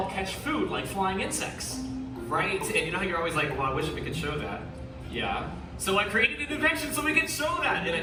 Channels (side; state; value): both; identical; correlation 1.00